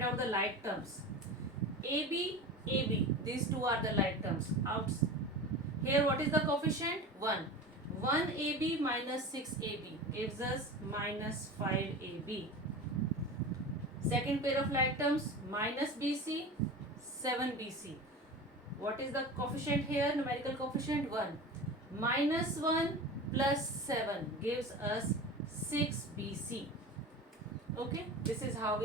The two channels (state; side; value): normal; both; correlation 0.32